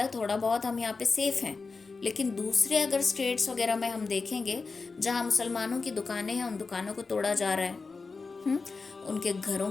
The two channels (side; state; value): right; quieter; 4.3 dB